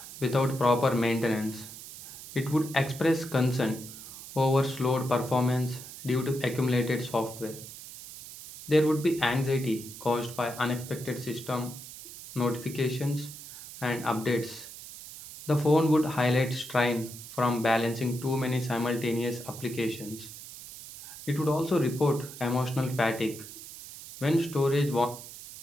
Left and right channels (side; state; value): right; noise; hiss, 14 dB below the sound